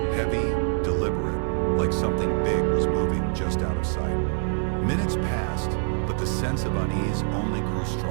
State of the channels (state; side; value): silent; left; 62 dB below the other